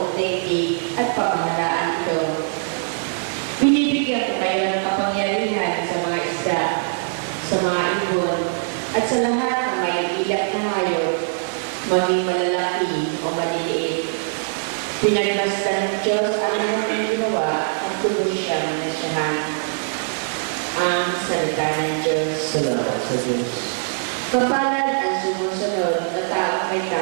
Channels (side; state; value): left; silent; digital silence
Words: daigdig at pamahalaan ito. Binibigyan ko kayo ng kapangyarihan sa mga isda, sa mga ibon, at sa lahat ng may ilak na hayop, maging malalaki o maliliit. Pinagbasta ng Diyos ang aming ginawa at tuloy siyang nasyahan. Ang salita ng Diyos. Salamat sa Diyos. Kapalad ang sumusunod na taong may